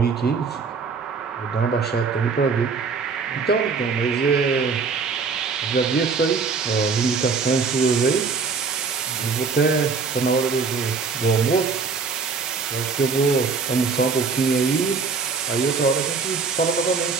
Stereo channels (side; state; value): left; quieter; 5.0 dB